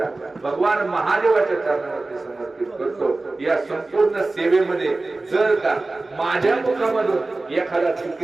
भगवान महादेवाच्या चरणावरती समर्पित करतो. या संपूर्ण सेवेमध्ये जर का माझ्या मुखामधून एखादा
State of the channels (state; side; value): quieter; left; 3.2 dB